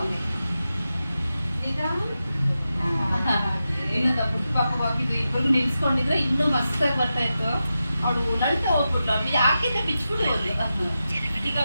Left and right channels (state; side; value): inverted; both; correlation -0.91